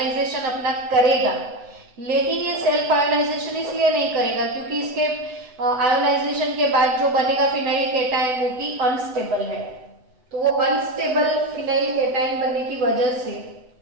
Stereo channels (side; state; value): left; late; 8.0 ms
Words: अपना करेगा। लेकिन ये सेल्फ आयोनाइजेशन इसलिए नहीं करेगा क्योंकि इसके आयोनाइजेशन के बाद जो बनेगा फिनाइल कैटायन वो कि अनस्टेबल है। तो वो अनस्टेबल फिनाइल कैटायन बनने की वजह से